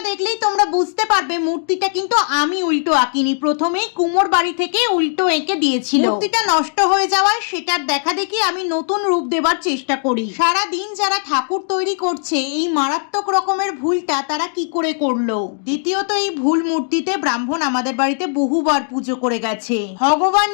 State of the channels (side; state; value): right; silent; digital silence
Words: দেখলেই তোমরা বুঝতে পারবে মূর্তিটা কিন্তু আমি উল্টো আঁকিনি, প্রথমেই কুমোর বাড়ি থেকে উল্টো এঁকে দিয়েছিল। মূর্তিটা নষ্ট হয়ে যাওয়ায় সেটার দেখা দেখি আমি নতুন রূপ দেবার চেষ্টা করি। সারা দিন যারা ঠাকুর তৈরি করছে এই মারাত্মক রকমের ভুলটা তারা কি করে করলো? দ্বিতীয়ত, এই ভুল মূর্তিতে ব্রাহ্মণ আমাদের বাড়িতে বহুবার পুজো করে গেছে। ভগবান